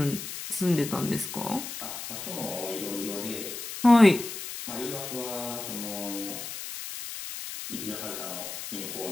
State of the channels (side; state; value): left; noise; hiss, 8 dB below the sound